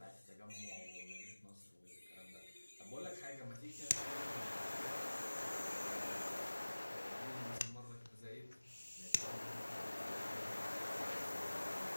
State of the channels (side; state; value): both; inverted; correlation -1.00